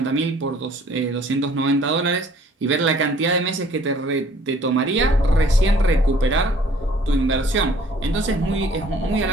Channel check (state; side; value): normal; both; correlation 0.56